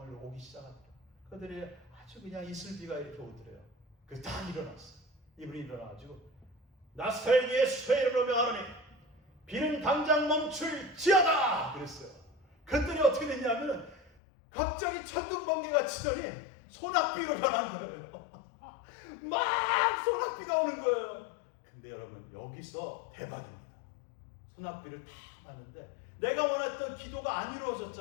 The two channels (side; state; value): right; drops out; at 14.1 s